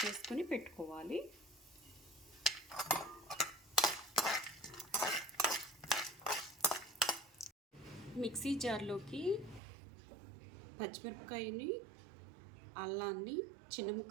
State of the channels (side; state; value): left; drops out; at 9.6 s